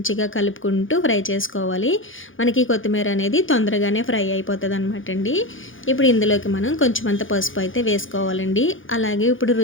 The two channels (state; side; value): late; right; 0.58 ms